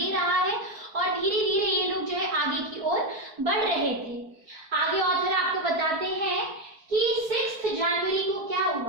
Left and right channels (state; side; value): late; left; 4.6 ms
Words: रहा है और धीरे धीरे ये लोग जो है आगे की ओर बढ़ रहे थे। आगे ऑथर आपको बताते हैं कि 6 जनवरी को क्या